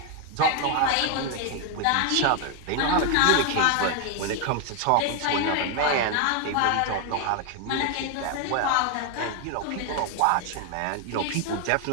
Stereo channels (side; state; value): both; different; correlation 0.01